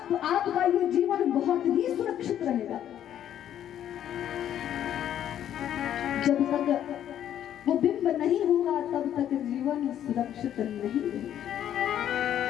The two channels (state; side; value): quieter; right; 10.6 dB